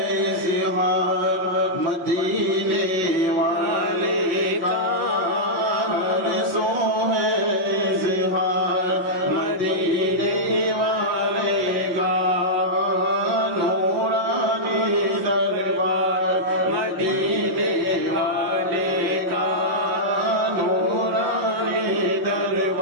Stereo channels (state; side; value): late; left; 5.5 ms